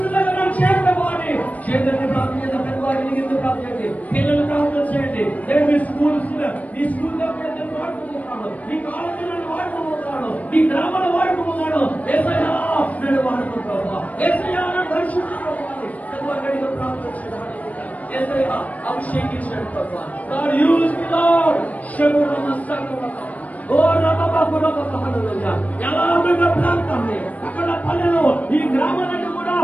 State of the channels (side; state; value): right; late; 0.071 ms